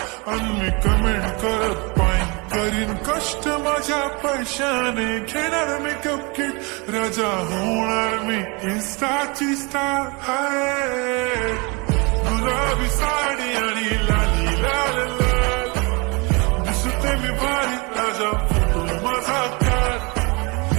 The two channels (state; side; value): quieter; left; 29.0 dB